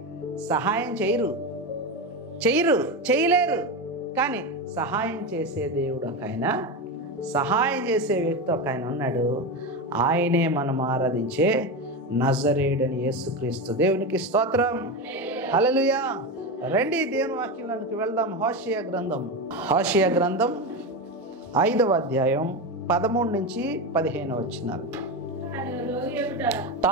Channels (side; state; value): both; normal; correlation 0.17